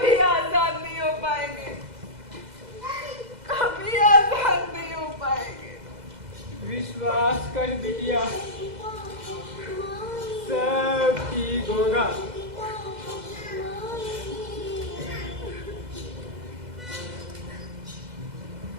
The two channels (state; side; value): late; left; 2.0 ms